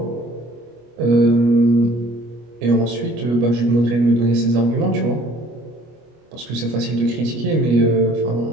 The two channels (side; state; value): left; late; 25 ms